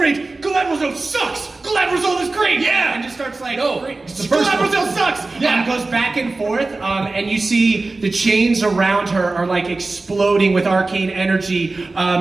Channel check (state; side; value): quieter; left; 3.4 dB